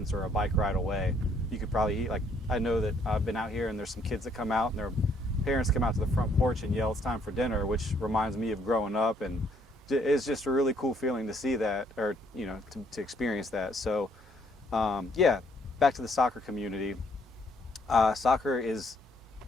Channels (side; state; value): both; normal; correlation 0.67